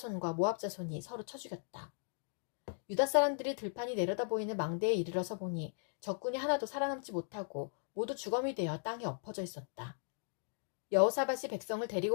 모압 자손이 서로 쳐 죽였다. 유다 사람들이 들판이 내려다 보이는 망대에 이르러서 보니 적군이 하나도 살아남지 못하고 모두 주검이 되어 땅에 엎어져 있었다. 여호사밧이 백성을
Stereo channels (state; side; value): silent; right; digital silence